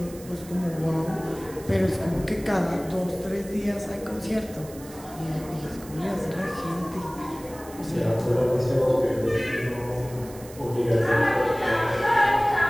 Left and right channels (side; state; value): right; noise; hiss, 19 dB below the sound